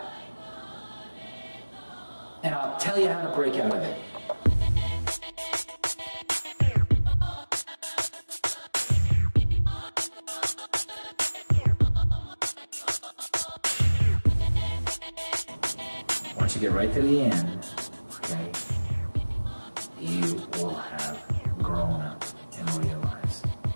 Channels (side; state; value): both; inverted; correlation -1.00